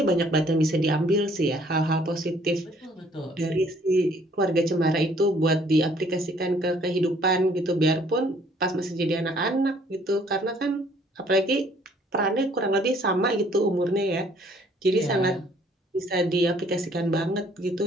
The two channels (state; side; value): normal; both; correlation 0.60